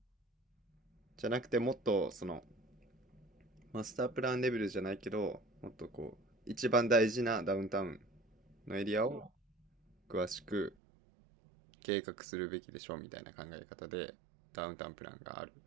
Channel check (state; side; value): drops out; left; at 10.8 s